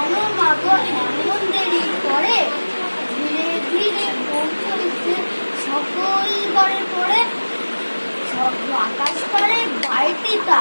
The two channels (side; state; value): both; inverted; correlation -1.00